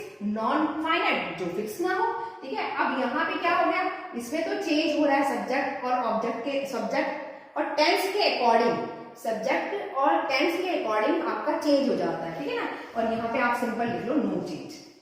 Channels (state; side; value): identical; both; correlation 1.00